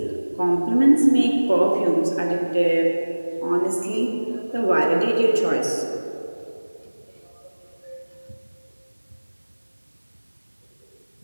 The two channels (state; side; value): inverted; both; correlation -1.00